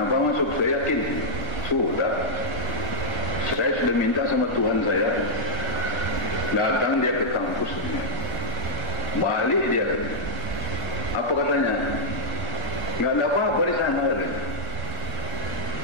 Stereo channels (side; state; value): right; late; 1.1 ms